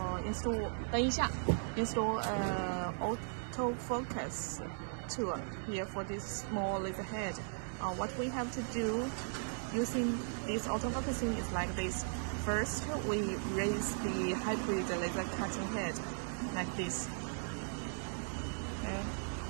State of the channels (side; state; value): left; silent; digital silence